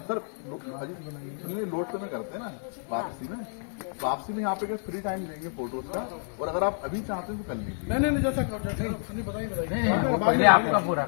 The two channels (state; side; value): silent; right; digital silence